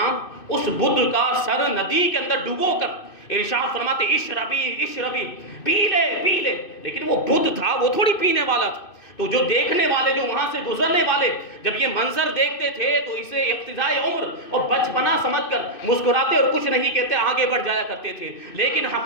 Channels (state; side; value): late; right; 2.6 ms